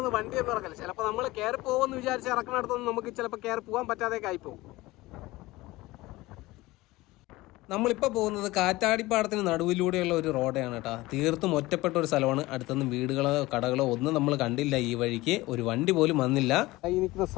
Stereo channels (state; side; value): quieter; right; 19.6 dB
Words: വണ്ടിയൊന്നും ഇറക്കില്ല. ചിലപ്പോൾ നമ്മൾ കയറി പോകുമെന്ന് വിചാരിച്ച് ഇറക്കണടുത്തൊന്നും നമുക്ക് ചിലപ്പോൾ കയറി പോകാൻ പറ്റാതെയൊക്കെ ആയിപ്പോവും. നമ്മളിപ്പോൾ പോകുന്നത് കാറ്റാടിപ്പാടത്തിന് നടുവിലൂടെയുള്ള ഒരു റോഡാണ് കേട്ടോ. തീർത്തും ഒറ്റപ്പെട്ട ഒരു സ്ഥലമാണ്. അടുത്തൊന്നും വീടുകളോ കടകളോ ഒന്നും നമ്മൾ കണ്ടില്ല. ഈ വഴിക്ക് ഒരു വണ്ടി പോലും വന്നില്ല. ഈ നിൽക്കുന്ന